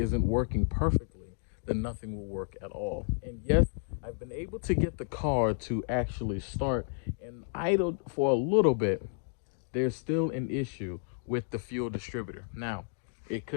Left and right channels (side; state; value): right; silent; digital silence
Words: working perfectly, then nothing will work at all. And yes, I've been able to get the car to actually start and idle for a little bit. There's still an issue with the fuel distributor. Now, it